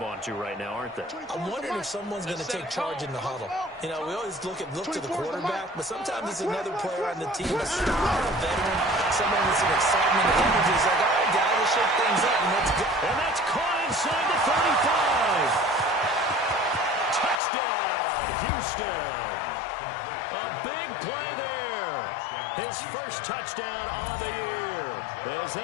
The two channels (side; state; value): right; drops out; at 17.4 s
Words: onto right now, aren't they? I'm wondering if someone's going to take charge in the huddle. You know, we always look to the quarterback, but sometimes it's another player on the team, a star, a veteran, someone with some excitement and energy. It's like, all right, guys, let's shake things up and let's go. And that's caught inside the 35. Touchdown, Houston. A big play there. His first touchdown on the year. As they